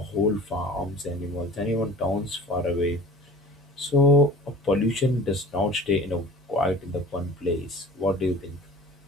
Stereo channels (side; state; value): both; normal; correlation 0.43